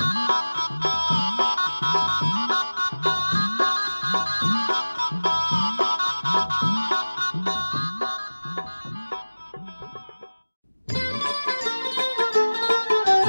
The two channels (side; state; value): both; inverted; correlation -1.00